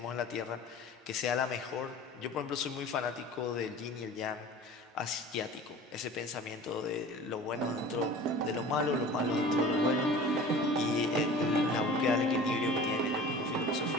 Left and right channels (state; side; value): normal; both; correlation 0.41